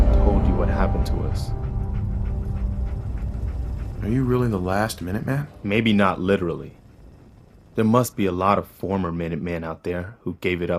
told you what happened to us. Are you really the last Minuteman? Maybe not literally. There must be a lot of former Minutemen out there who gave it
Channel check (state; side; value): identical; both; correlation 1.00